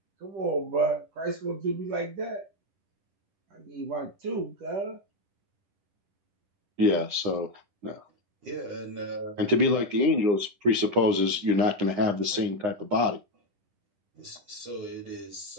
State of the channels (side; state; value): left; late; 9.8 ms